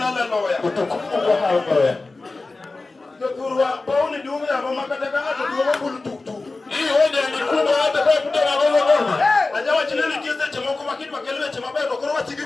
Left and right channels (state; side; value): quieter; right; 3.5 dB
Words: haleluya. Utukufu kwa haleluya. Jokurwa pauni dume ya mama kataka hata dume bulu tuktuk. Hii hoja ni kubwa hata kwa kutoka ngoma. Ajawa chineli kize chama kwa kitu makelele chama bado kwa chigike